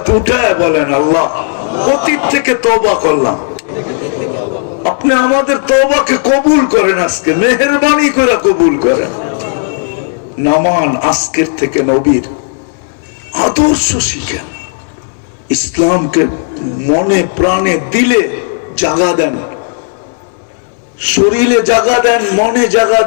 উঠে বলেন, আল্লাহ অতীত থেকে তওবা করলাম, আপনি আমাদের তওবাকে কবুল করেন, আজকে মেহেরবানি করে কবুল করেন। নামান আজকের থেকে নবীর আদর্শ শিখেন, ইসলামকে মনে প্রাণে দিলে জাগা দেন, শরীরে জাগা দেন, মনে জাগা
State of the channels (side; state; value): right; silent; digital silence